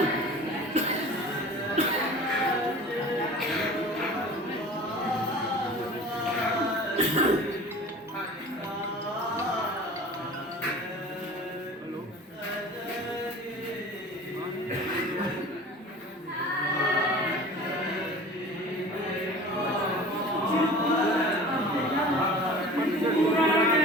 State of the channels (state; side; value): normal; both; correlation 0.40